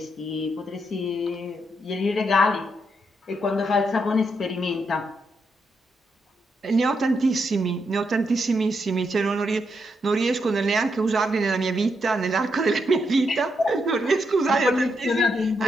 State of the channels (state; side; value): normal; both; correlation 0.81